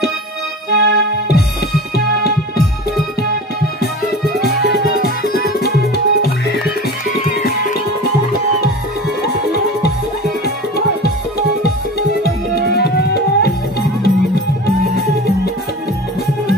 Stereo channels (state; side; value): normal; both; correlation 0.34